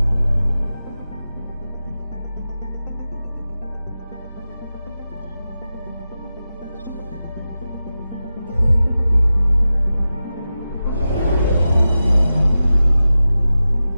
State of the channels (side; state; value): both; inverted; correlation -0.93